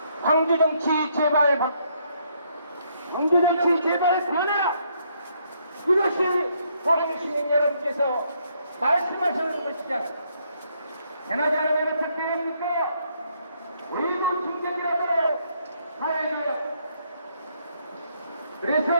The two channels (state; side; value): inverted; both; correlation -0.71